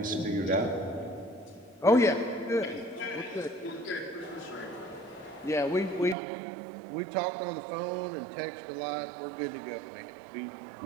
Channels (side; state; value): left; drops out; at 6.2 s